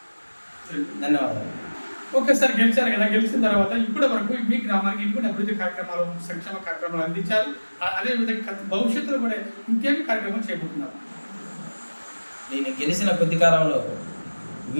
ధన్యవాదాలు. ఒకేసారి గెలిచారు కదా, గెలిచిన తర్వాత ఇప్పటి వరకు మీ గ్రామానికి ఇంకొన్ని అభివృద్ధి కార్యక్రమాలు, సంక్షేమ కార్యక్రమాలు అందించారు. అదేవిధంగా భవిష్యత్తులో కూడా ఇంకేమి కార్యక్రమాలు చేపడుతున్నారు? నేను గెలిచిన కొద్ది కాలంలో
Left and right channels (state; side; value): inverted; both; correlation -1.00